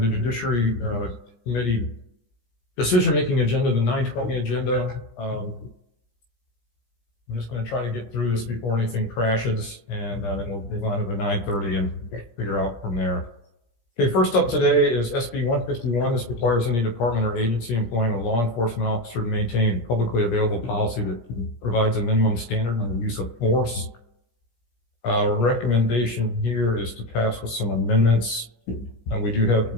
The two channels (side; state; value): right; late; 17 ms